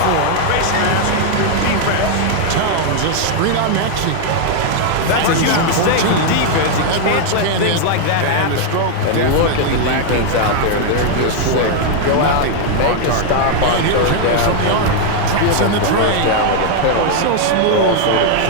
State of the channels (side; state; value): both; different; correlation 0.00